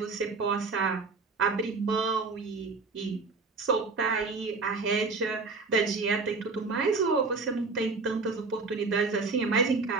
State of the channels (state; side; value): quieter; left; 4.1 dB